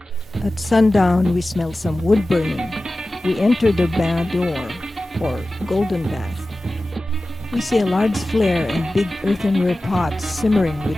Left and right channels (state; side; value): normal; both; correlation 0.96